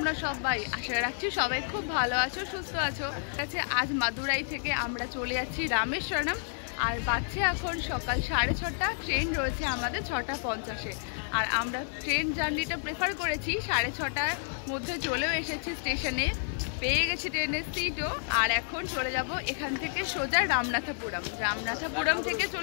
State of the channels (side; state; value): right; silent; 58 dB below the other